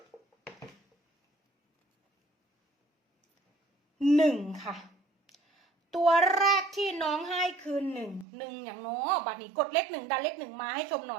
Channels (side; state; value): left; drops out; at 8.2 s